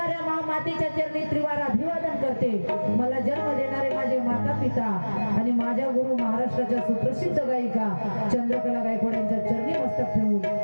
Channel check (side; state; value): both; inverted; correlation -1.00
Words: महामातेच्या चरणी त्रिवार अभिवादन करते. मला जन्म देणारे माझे माता पिता आणि माझ्या गुरु महाराष्ट्राच्या सुप्रसिद्ध गायिका चंद्रकला गायकवाड यांच्या चरणी मस्तक ठेवून